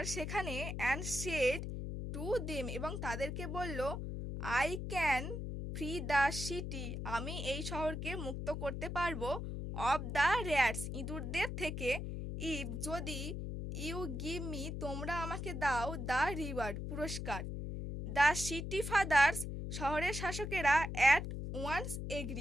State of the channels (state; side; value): noise; left; hum, 4 dB below the sound